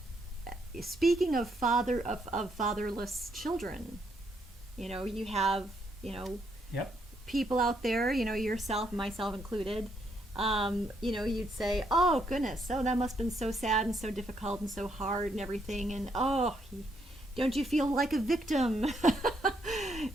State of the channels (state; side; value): normal; both; correlation 0.75